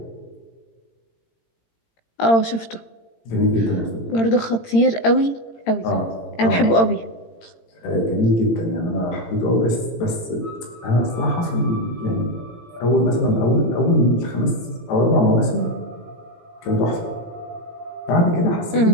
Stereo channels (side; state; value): right; late; 18 ms